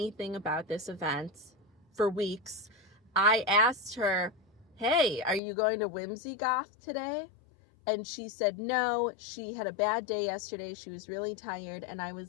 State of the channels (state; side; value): drops out; right; at 5.4 s